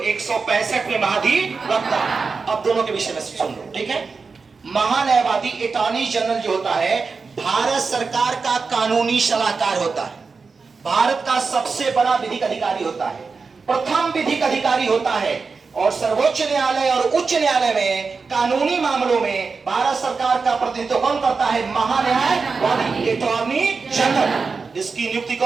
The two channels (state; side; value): quieter; left; 4.7 dB